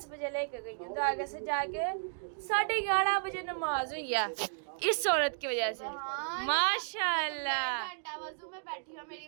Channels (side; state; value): left; silent; digital silence